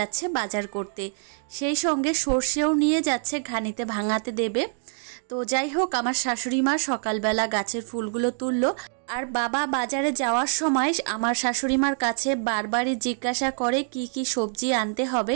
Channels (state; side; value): silent; left; 61 dB below the other